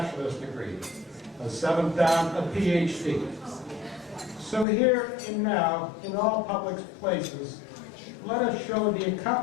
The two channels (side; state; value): right; drops out; at 4.7 s